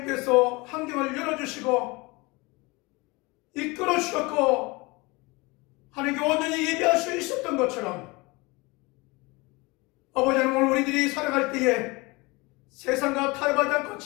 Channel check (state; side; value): quieter; right; 24.9 dB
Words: 환경을 열어주시고 이끌어 주셨고 하나님께 온전히 예배할 수 있었던 것처럼, 아버지 하나님, 오늘 우리들이 살아갈 때에 세상과 타협하지 않고,